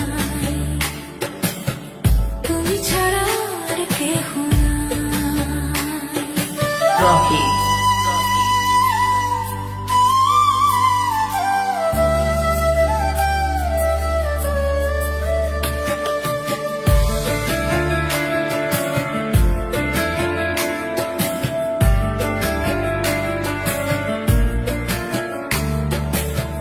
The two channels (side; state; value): both; identical; correlation 1.00